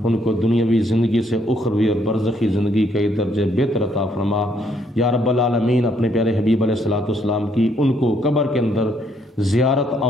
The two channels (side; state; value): both; normal; correlation 0.70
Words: ان کو دنیاوی زندگی سے اخروی اور برزخی زندگی کے درجے بہتر عطا فرما۔ یا رب العالمین اپنے پیارے حبیب علیہ الصلوۃ والسلام کی ان کو قبر کے اندر زیارت